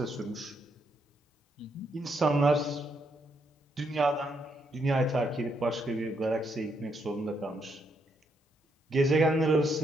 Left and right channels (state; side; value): normal; both; correlation 0.76